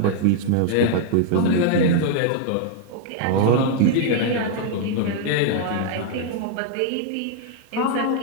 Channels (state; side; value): different; both; correlation -0.01